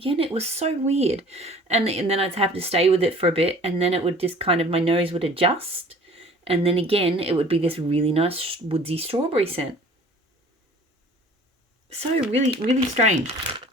It was so weird. And then I'd have to stay with it for a bit, and then it would just my nose would adjust. And then again, it would be this really nice woodsy strawberry scent. So really strange.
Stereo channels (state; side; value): normal; both; correlation 0.49